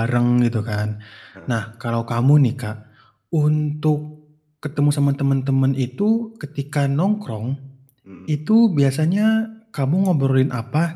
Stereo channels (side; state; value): both; identical; correlation 1.00